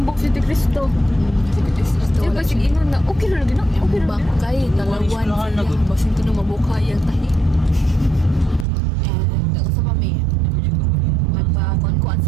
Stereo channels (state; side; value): drops out; left; at 8.7 s